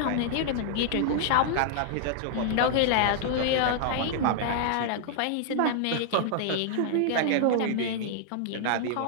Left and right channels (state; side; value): different; both; correlation -0.01